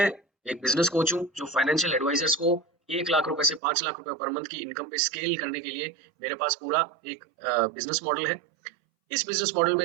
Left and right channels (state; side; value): drops out; left; at 3.6 s